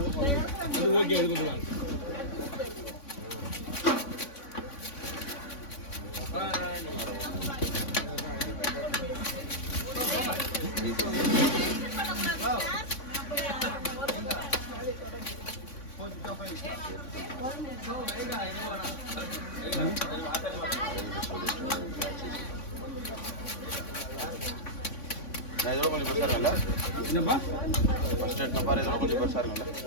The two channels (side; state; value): right; late; 3.5 ms